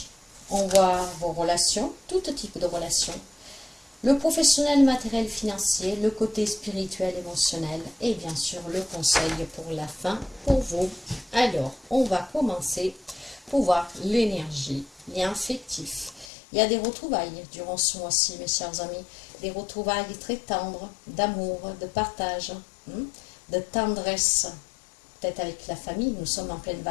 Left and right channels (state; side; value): drops out; right; at 16.3 s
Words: on voit vos relations, tout type de relations, le professionnel, matériel, financier, le côté spirituel, émotionnel et bien sûr le conseil pour la fin pour vous. Alors, on va commencer pour voir l'énergie, lien affectif. Il y a des retrouvailles durant ce mois-ci, mes chers amis. Des retrouvailles très tendres, d'amour, de partage, de tendresse, peut-être avec la famille. Nous sommes en pleine